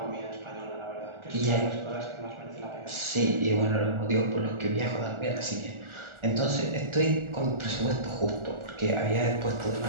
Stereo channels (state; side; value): late; left; 1.4 ms